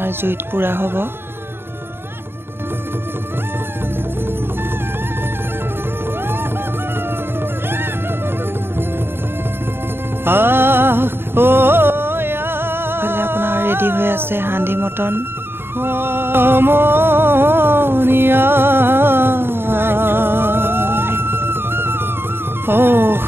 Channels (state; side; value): late; left; 0.11 ms